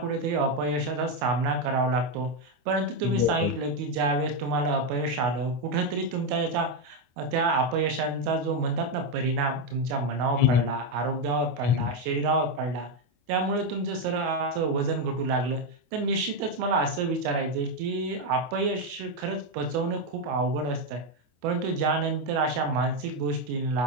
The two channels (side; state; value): left; late; 25 ms